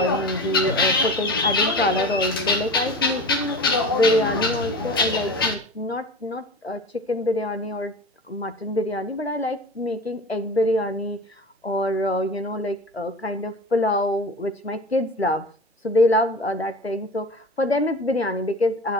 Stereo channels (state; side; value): normal; both; correlation 0.34